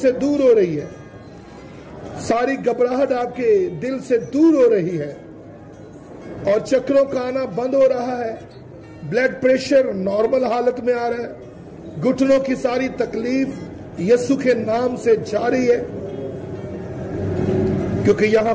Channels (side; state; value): both; identical; correlation 1.00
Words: दूर हो रही है, सारी घबराहट आपके दिल से दूर हो रही है और चक्रों का आना बंद हो रहा है। ब्लड प्रेशर नॉर्मल हालत में आ रहा है। घुटनों की सारी तकलीफ यीशु के नाम से जा रही है, क्योंकि यहां